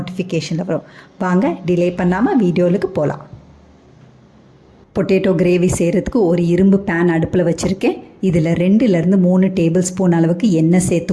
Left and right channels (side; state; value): both; identical; correlation 1.00